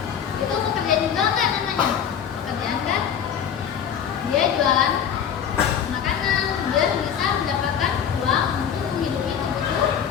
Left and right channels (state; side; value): quieter; right; 8.3 dB